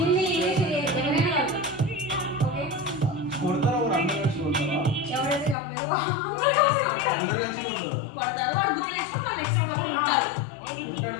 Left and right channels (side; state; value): right; drops out; at 5.6 s